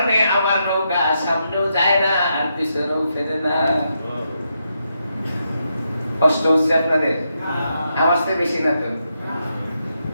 আমার নৌকা সামনেও যায় না আর পিছনেও ফেরে না। কষ্ট হচ্ছে আপনাদের? আমার চেয়ে বেশি না তো?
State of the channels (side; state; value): both; inverted; correlation -0.82